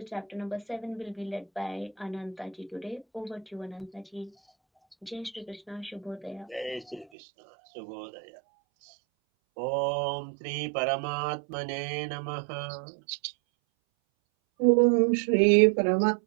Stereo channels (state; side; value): drops out; left; at 7.1 s